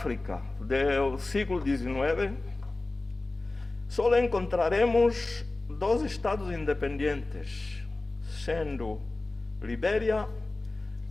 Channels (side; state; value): right; quieter; 3.1 dB